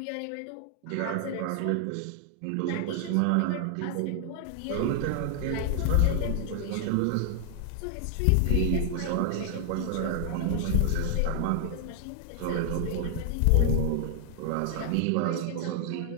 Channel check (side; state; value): both; different; correlation 0.00